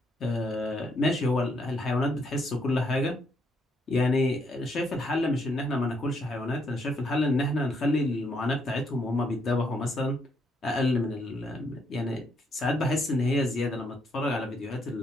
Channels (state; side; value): normal; both; correlation 0.74